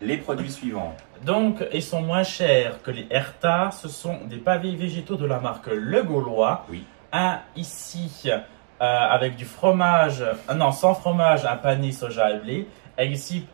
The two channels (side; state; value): left; silent; digital silence